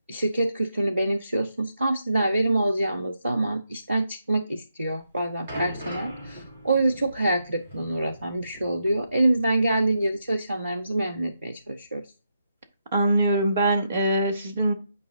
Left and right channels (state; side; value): inverted; both; correlation -0.82